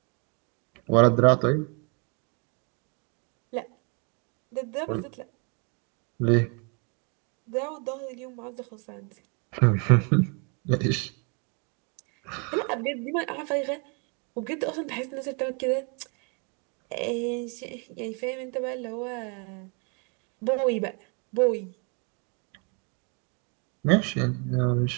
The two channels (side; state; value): left; quieter; 35.5 dB